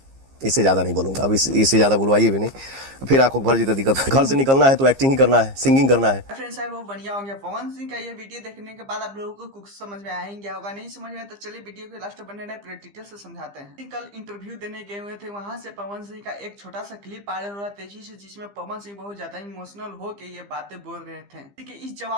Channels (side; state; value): left; late; 15 ms